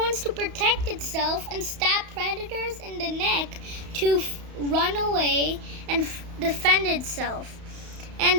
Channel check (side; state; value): left; late; 31 ms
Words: to protect itself and stab predators in the neck to run away and defend itself.